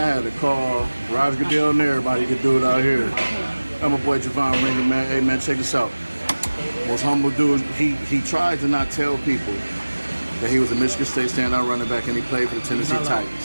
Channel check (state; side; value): inverted; both; correlation -1.00